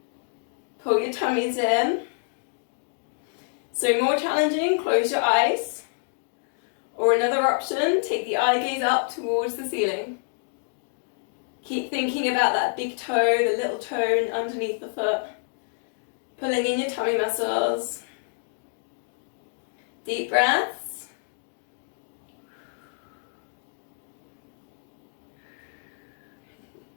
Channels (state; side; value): silent; right; digital silence